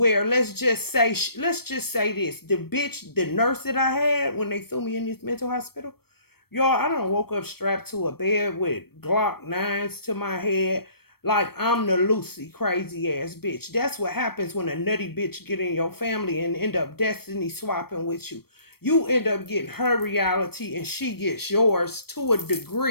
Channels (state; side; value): late; right; 0.95 ms